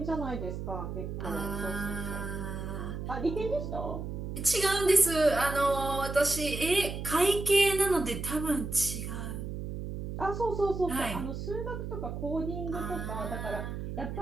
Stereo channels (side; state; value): right; noise; hum, 6 dB below the sound